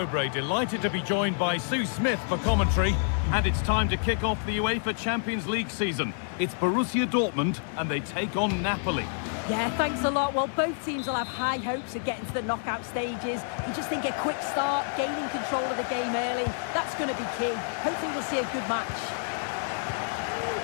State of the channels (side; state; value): right; silent; 59 dB below the other